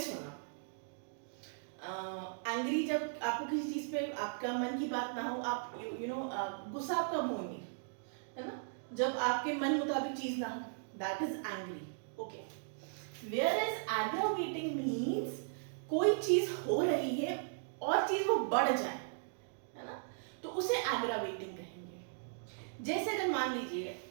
होना. एंग्री जब आपको किसी चीज पे आपका मन की बात ना हो, आप गुस्सा आप कब होंगे, है ना, जब आपके मन मुताबिक चीज ना हो, that is angry. Okay, where is aggravating means कोई चीज हो रही है और चीज वो बढ़ जाए, है ना, तो उसे एग्रावेटिंग कहेंगे. जैसे अगर मान लीजिए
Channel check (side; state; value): left; silent; digital silence